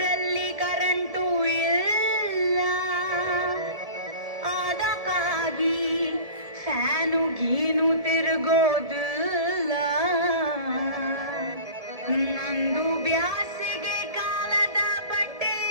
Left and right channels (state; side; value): late; left; 1.7 ms